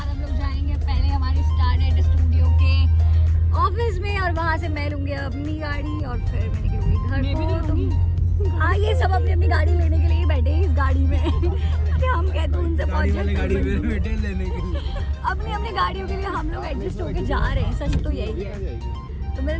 हम लोग जाएंगे पहले हमारे स्टारनेट स्टूडियो के ऑफिस में, और वहाँ से मैं लूँगी अपनी गाड़ी और फिर मैं निकलूँगी घर को। हाँ ये सब अपनी अपनी गाड़ी लेने के लिए बैठे हैं इस गाड़ी में कि हम कहते हैं उनसे पहुँचे गाड़ी में बैठे लेने के लिए, अपनी अपनी गाड़ियों के लिए हम लोग एडजस्ट होके जा रहे हैं। सच तो यही है। तो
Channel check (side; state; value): both; identical; correlation 1.00